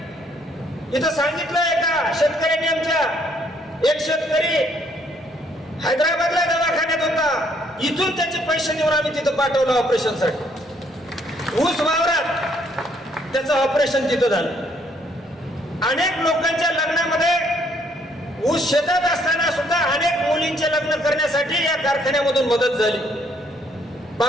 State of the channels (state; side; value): normal; both; correlation 0.67